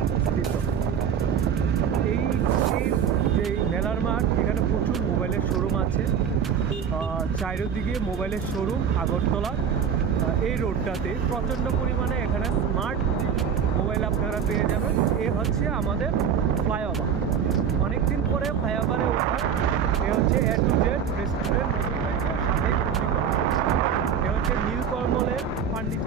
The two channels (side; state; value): left; quieter; 7.6 dB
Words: স্থিত। এই যে মেলার মাঠ, এখানে প্রচুর মোবাইলের শোরুম আছে। চারিদিকে মোবাইলের শোরুম আগরতলা। এই রোডটাতে প্রচণ্ড পরিমাণে এখানে স্মার্ট মোবাইল আপনারা পেয়ে যাবেন। এ হচ্ছে আমাদের ফ্লাইওভার। অনেকদিন পরে ফ্লাইওভারে ওঠার। এ হচ্ছে এ টু জেড রেস্টুরেন্ট সাথে এ হচ্ছে নীলকমলের